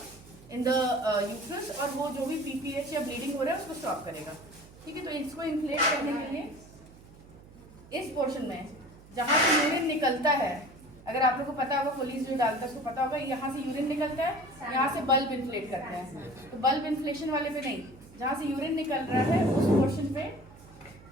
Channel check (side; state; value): right; noise; hum, 21 dB below the sound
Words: इन द यूट्रस और वो जो भी पीपीएच या ब्लीडिंग हो रहा है उसको स्टॉप करेगा। ठीक है, तो इसको इन्फ्लेट करने के लिए इस पोर्शन में जहाँ से यूरिन निकलता है, अगर आप लोग को पता होगा पुलिस जो डालता है उसको पता होगा, यहाँ से यूरिन निकलता है, यहाँ से बल्ब इन्फ्लेट करते हैं। तो बल्ब इन्फ्लेशन वाले पे नहीं, जहाँ से यूरिन निकल रहा है उस पोर्शन पे